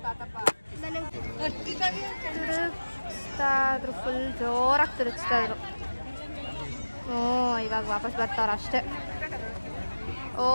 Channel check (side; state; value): both; inverted; correlation -1.00